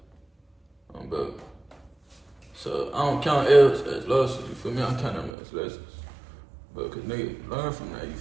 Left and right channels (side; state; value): left; drops out; at 5.3 s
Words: Bro. So I don't count L's as losses, you feel me? I count them as lessons. But cause nigga, learn from that, you